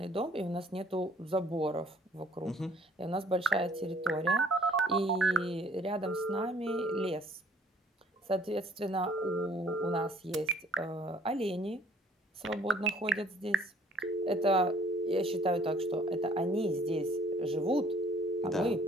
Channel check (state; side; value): normal; both; correlation 0.58